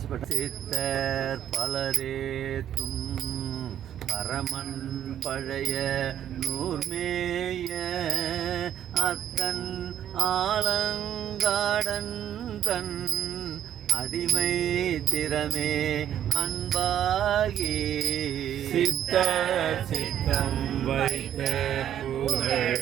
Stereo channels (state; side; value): quieter; left; 10.5 dB